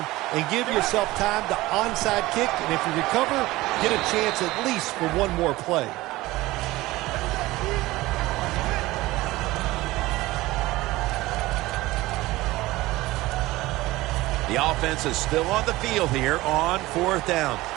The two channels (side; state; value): left; quieter; 18.7 dB